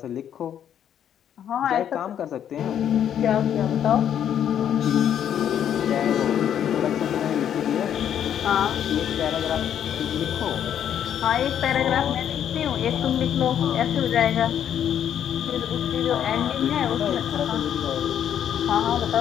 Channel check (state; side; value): quieter; right; 9.6 dB